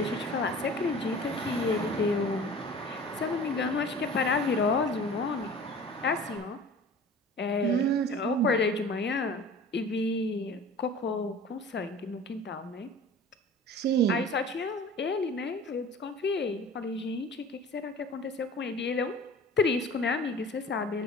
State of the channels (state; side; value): normal; both; correlation 0.42